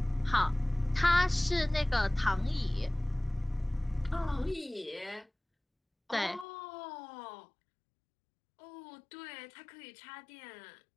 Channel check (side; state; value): right; drops out; at 6.5 s